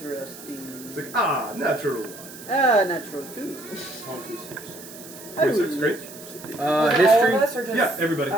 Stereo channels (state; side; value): noise; right; hiss, 16 dB below the sound